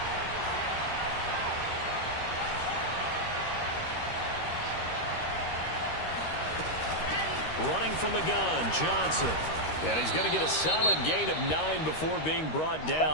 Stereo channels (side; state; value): right; late; 13 ms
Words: Running from the gun, Johnson. And he's going to get a solid gain of 9 before being brought